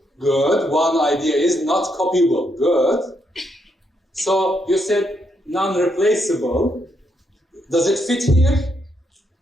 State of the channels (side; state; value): both; normal; correlation 0.77